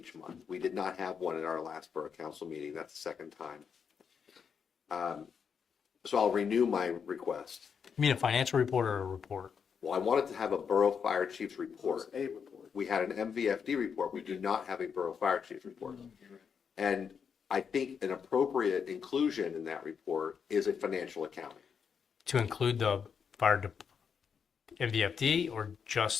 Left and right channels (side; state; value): right; quieter; 6.7 dB